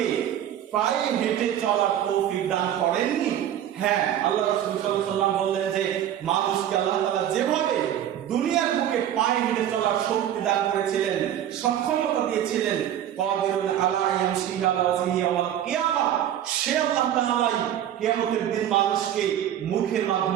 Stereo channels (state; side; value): quieter; left; 10.9 dB